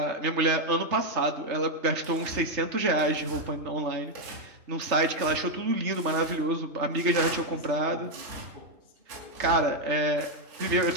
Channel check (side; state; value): left; late; 3.3 ms